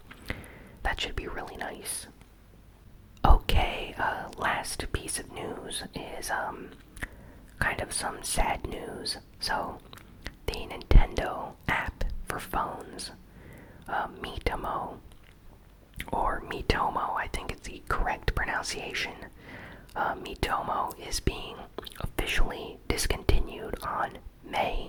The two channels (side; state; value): both; identical; correlation 1.00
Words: that should be really nice. Okay, last piece of news is kind of some sad news. So the Nintendo app for phones, Miitomo, or Miitomo, I think is the correct pronunciation. Miitomo is being officially discontinued on